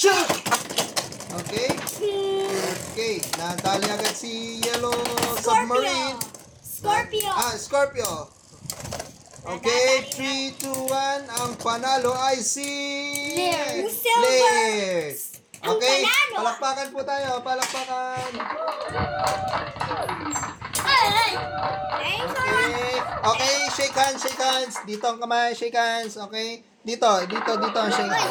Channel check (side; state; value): both; identical; correlation 1.00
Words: Okay? Okay, nadali agad si Yellow Submarine. Scorpio. Scorpio. Okay, 3, 2, 1. Ang panalo ay si... Lair. Silver. Lair. Ang Okay, panalo. palakpakan po tayo. Palakpakan. Ay! Okay, shake hands, shake hands. Dito ang kamay, shake hands. Okay? Dito ang shake